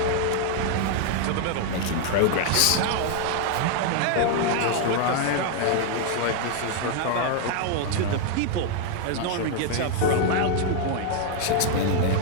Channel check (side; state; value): both; different; correlation 0.00